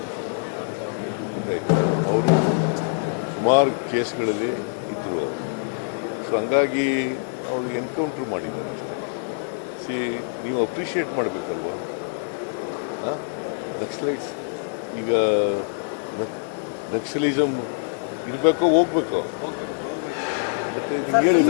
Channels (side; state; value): right; silent; digital silence